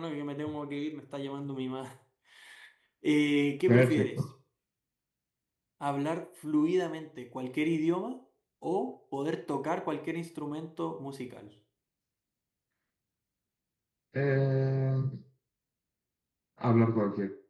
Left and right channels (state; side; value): identical; both; correlation 1.00